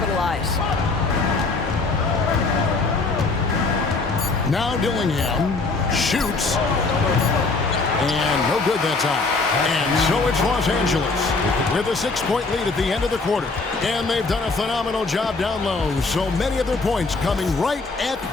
Now Dillingham shoots. And no good that time. And so it's Los Angeles with a 6-point lead at the end of the quarter. And they've done a phenomenal job down low. So many of their points coming right at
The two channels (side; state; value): right; quieter; 3.8 dB